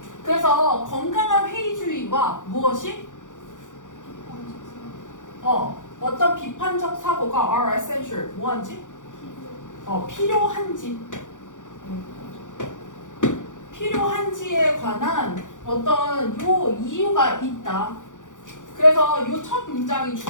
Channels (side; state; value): right; late; 0.87 ms